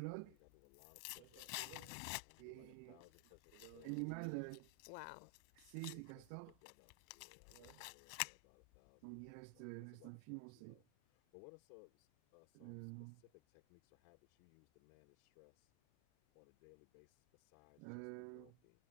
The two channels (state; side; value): different; both; correlation 0.00